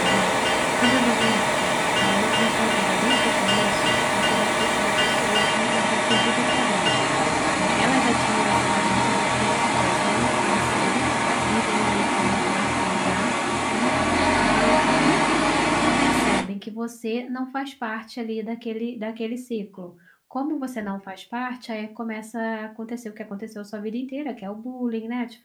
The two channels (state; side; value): identical; both; correlation 1.00